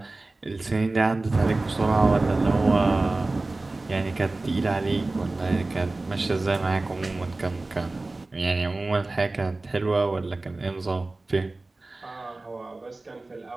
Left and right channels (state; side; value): quieter; left; 3.1 dB